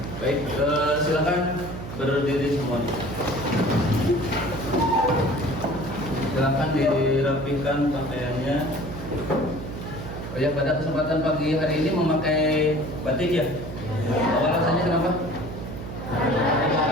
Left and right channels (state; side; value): noise; right; hum, 9 dB below the sound